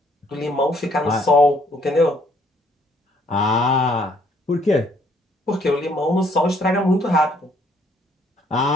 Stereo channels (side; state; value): both; normal; correlation 0.65